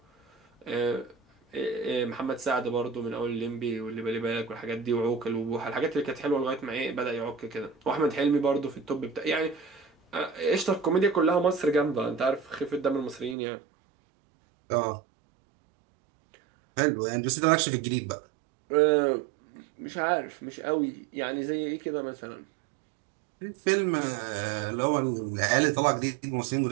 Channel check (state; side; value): drops out; left; at 13.4 s